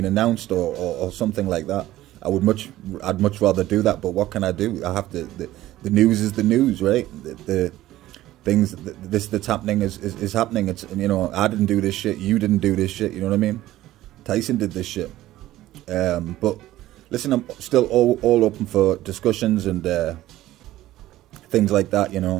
announced, or something like that. I'd much rather do that. But what can I do? I have to. The news is the news, right? The things that's happening is happening. It's, you know, I didn't do this shit. You didn't do this shit. You know what I mean? Tyson did this shit. But listen, I'm still all open for discussions and things like that. You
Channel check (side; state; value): left; quieter; 15.2 dB